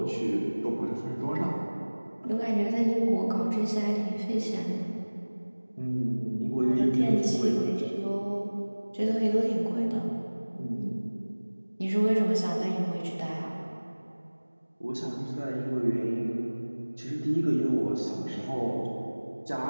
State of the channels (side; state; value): both; inverted; correlation -1.00